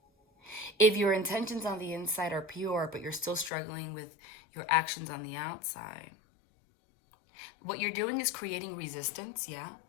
If your intentions on the inside are pure, but you're still struggling with your actions on the outside, what you're doing is creating resistance, yeah?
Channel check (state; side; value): drops out; right; at 3.5 s